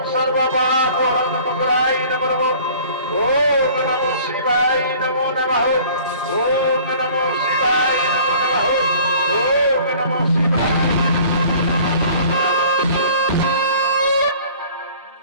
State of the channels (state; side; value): inverted; both; correlation -0.50